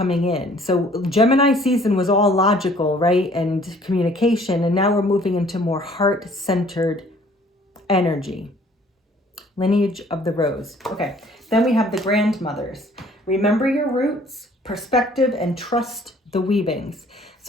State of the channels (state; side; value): normal; both; correlation 0.56